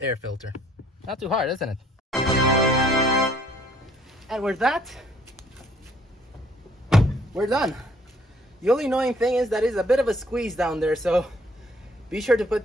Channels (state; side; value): normal; both; correlation 0.62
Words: air filter. Not too hard, isn't it? And with that, we're done. The only annoying thing is that it's a bit of a squeeze down there, so be sure to